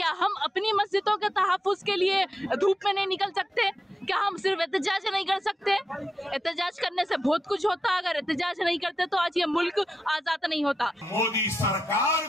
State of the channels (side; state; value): both; normal; correlation 0.88